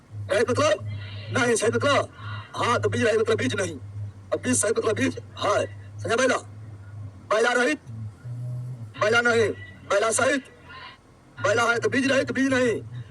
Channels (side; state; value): both; identical; correlation 1.00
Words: रहित मतलब नहीं, सहित मतलब हाँ। तो बीज रहित मतलब बीज नहीं, अब बीज सहित मतलब बीज है, समझा। बैला, बैला रहित, बैला नहीं, बैला सहित, बैला है तो बीज रहित बीज नहीं।